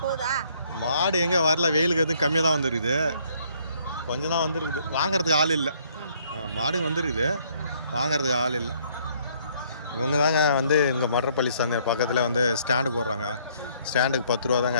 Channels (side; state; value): both; inverted; correlation -0.65